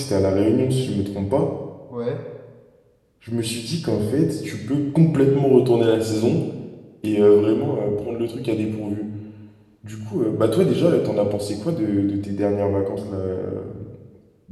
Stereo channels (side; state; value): both; identical; correlation 1.00